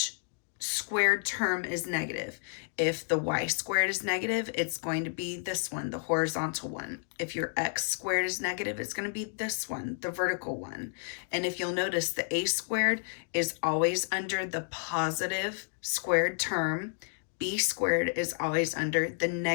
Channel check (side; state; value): right; silent; digital silence